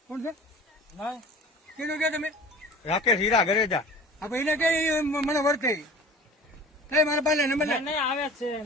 કોણ છે તમે રાકેશ હીરા ઘરે જા એને કઈ મને વર્તે કઈ મારા પાસે નંબર નહીં આવે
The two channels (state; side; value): normal; both; correlation 0.42